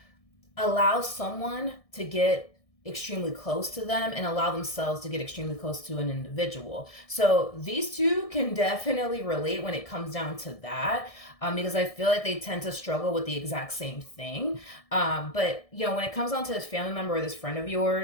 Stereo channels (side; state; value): right; late; 1.6 ms